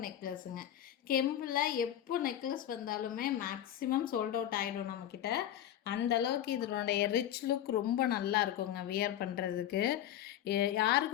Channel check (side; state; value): right; quieter; 11.3 dB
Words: நெக்லஸுங்க. கெம்பில் எப்போ நெக்லஸ் வந்தாலுமே மேக்ஸிமம் சோல்ட் அவுட் ஆகிடும் நம்மக்கிட்ட. அந்த அளவுக்கு இதனுடைய ரிச் லுக் ரொம்ப நல்லா இருக்குங்க வியர் பண்ணுறதுக்கு.